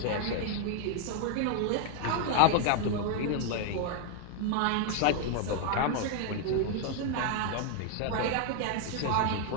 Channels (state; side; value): different; both; correlation 0.00